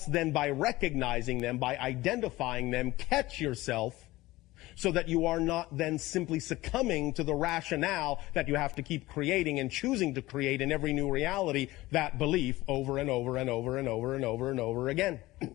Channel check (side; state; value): right; quieter; 18.5 dB